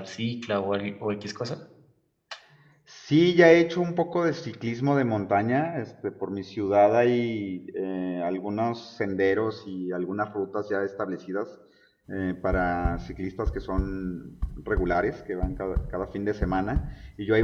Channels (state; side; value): identical; both; correlation 1.00